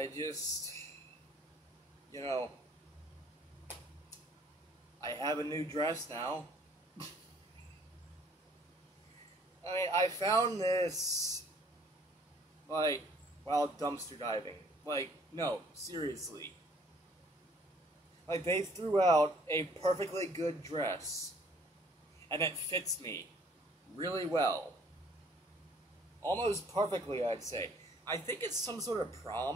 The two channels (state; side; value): normal; both; correlation 0.59